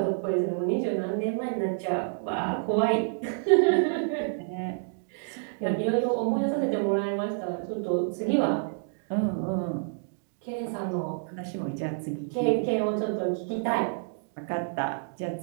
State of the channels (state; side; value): silent; left; digital silence